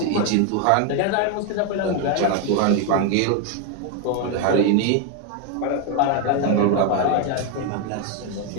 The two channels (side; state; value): both; different; correlation 0.01